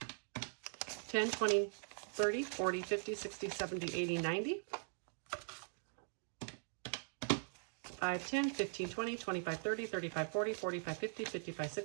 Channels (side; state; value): left; silent; digital silence